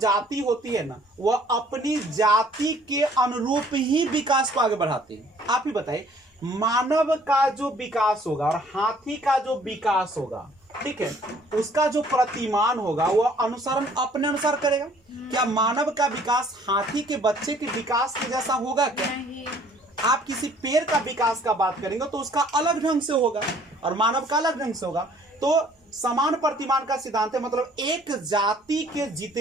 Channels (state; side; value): normal; both; correlation 0.58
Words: होती है ना, वह अपनी जाति के अनुरूप ही विकास को आगे बढ़ाती है। आप ही बताइए, मानव का जो विकास होगा और हाथी का जो विकास होगा, ठीक है, उसका जो प्रतिमान होगा वह अनुसरण अपने अनुसार करेगा। क्या मानव का विकास हाथी के बच्चे के विकास के जैसा होगा क्या? आप किसी पेड़ का विकास का बात करेंगे तो उसका अलग ढंग से होगा और मानव का अलग ढंग से होगा। तो समान प्रतिमान का सिद्धांत है, मतलब एक जाति के